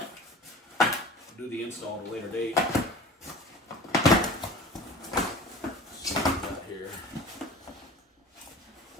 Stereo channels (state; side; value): normal; both; correlation 0.40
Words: do the install at a later date. Let's see what we got here.